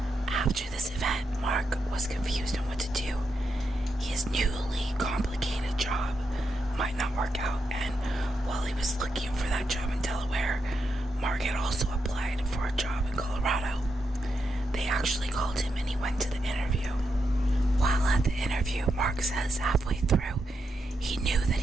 After this event, Mark was confused on what to do. His newly complicated job might not work out, and while he was looking for that job in Delaware, Mark had also applied for a job in Colorado. They actually called him and he went to the interview. While at the interview, Mark says halfway through, he knew that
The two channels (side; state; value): both; normal; correlation 0.84